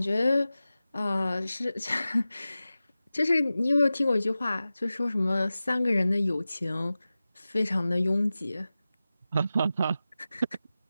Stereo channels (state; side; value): inverted; both; correlation -0.95